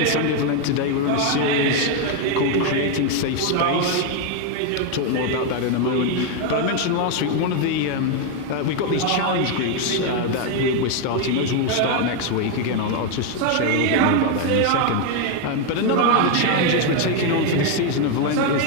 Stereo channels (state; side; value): different; both; correlation 0.01